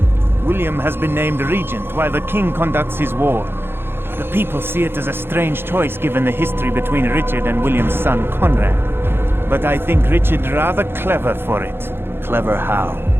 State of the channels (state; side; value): late; left; 0.11 ms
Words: William has been named regent while the king conducts his war. The people see it as a strange choice given the history between Richard and William's son Conrad. But I think Richard rather clever for it. Clever how?